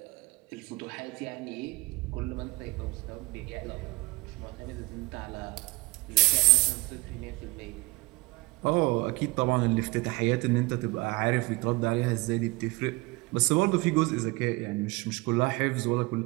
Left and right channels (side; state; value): left; quieter; 24.1 dB